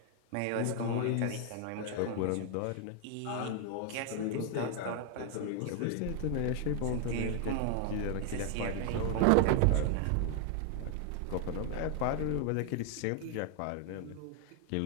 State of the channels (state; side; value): different; both; correlation 0.00